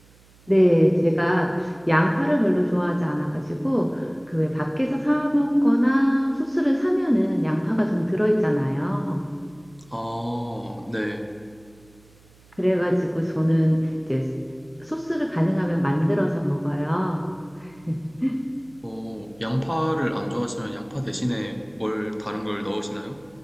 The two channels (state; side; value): noise; right; hum, 28 dB below the sound